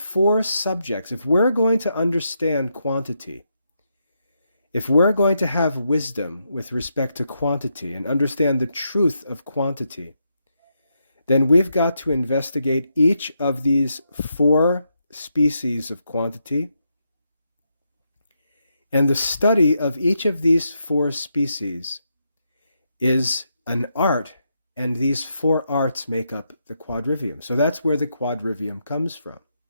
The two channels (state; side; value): inverted; both; correlation -0.82